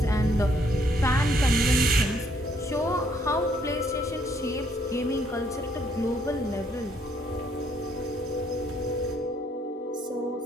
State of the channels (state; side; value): normal; both; correlation 0.68